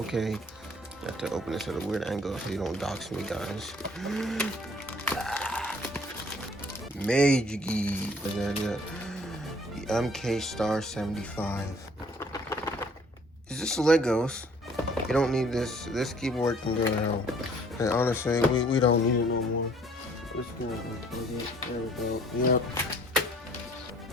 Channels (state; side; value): normal; both; correlation 0.57